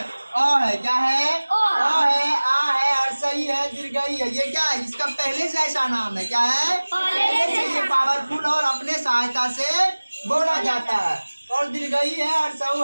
है, क्या है? अ है, आ है, अर्सई है, दीर्घई है। ये क्या है? इसका पहले से ऐसा नाम है। क्या है? पहले से ये पावरफुल और अपने सहायता से बोला जाता है। और दीर्घई है, अर्सऊ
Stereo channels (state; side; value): inverted; both; correlation -1.00